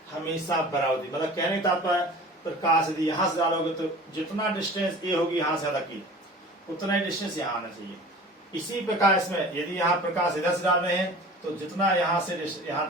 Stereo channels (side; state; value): both; normal; correlation 0.41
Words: हमेशा बराबर होगी। मतलब कहने का तात्पर्य, प्रकाश यदि यहां से डालोगे तो जितना डिस्टेंस ये होगी यहां से अलग की, उतना ही डिस्टेंस यहाँ आना चाहिए। इसी प्रकार इसमें यदि यहाँ प्रकाश इधर से डाल रहे हैं तो जितना यहाँ से यहाँ